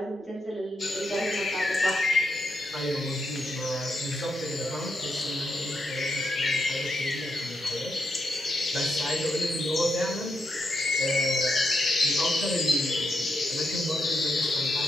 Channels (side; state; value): both; normal; correlation 0.83